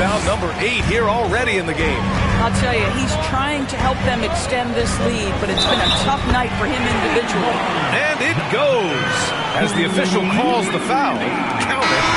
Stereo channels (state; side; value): identical; both; correlation 1.00